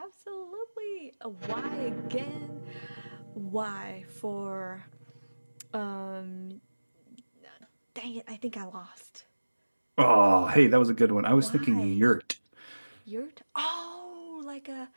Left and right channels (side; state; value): both; inverted; correlation -1.00